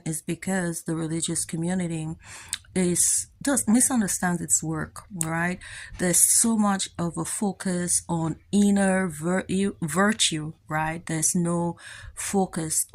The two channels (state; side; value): identical; both; correlation 1.00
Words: is because the religious community is does misunderstand its work, right? There's so much of a focus on inner virtue, right? There's no focus